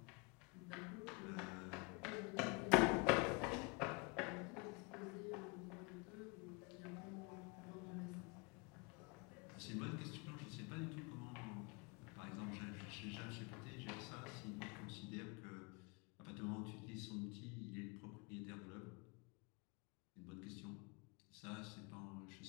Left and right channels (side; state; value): right; quieter; 29.7 dB